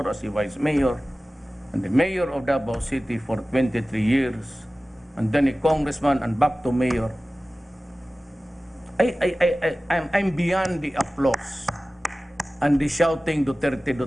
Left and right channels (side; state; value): both; normal; correlation 0.97